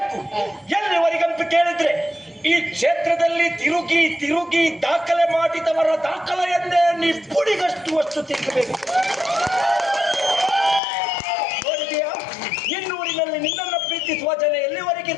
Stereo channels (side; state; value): right; drops out; at 10.8 s